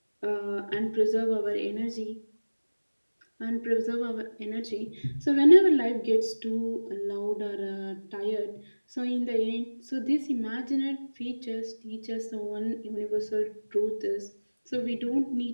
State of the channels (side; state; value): both; inverted; correlation -1.00